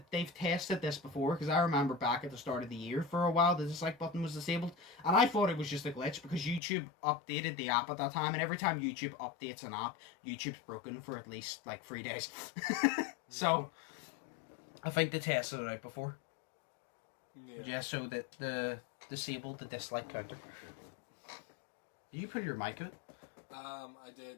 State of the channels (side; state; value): right; drops out; at 6.6 s